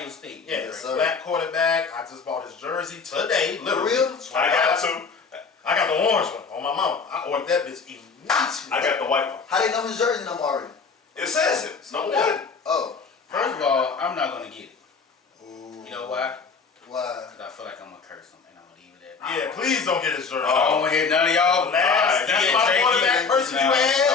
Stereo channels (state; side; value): quieter; right; 5.1 dB